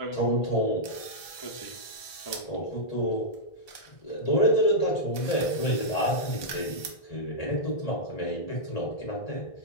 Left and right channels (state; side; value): late; right; 1.3 ms